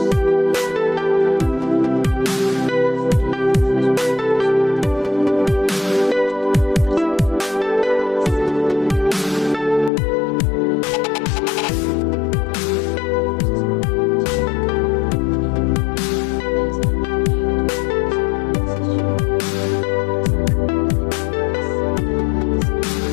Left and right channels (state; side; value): drops out; right; at 9.9 s